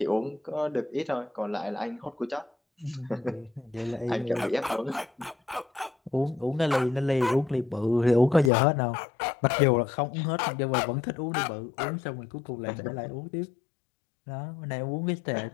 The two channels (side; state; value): right; drops out; at 8.5 s